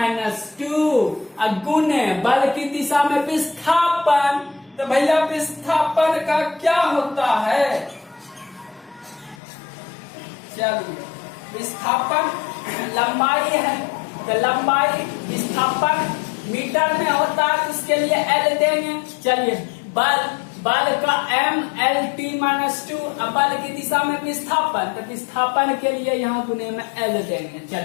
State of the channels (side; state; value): right; drops out; at 9.4 s